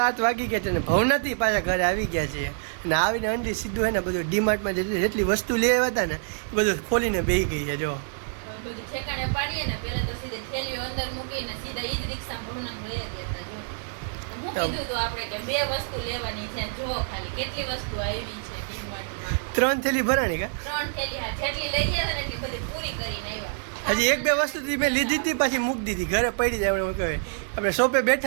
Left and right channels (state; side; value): silent; left; digital silence